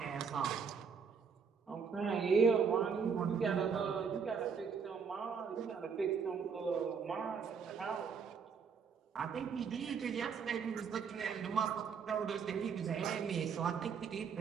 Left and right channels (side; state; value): left; quieter; 6.2 dB